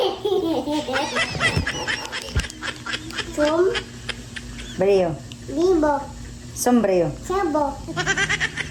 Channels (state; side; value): identical; both; correlation 1.00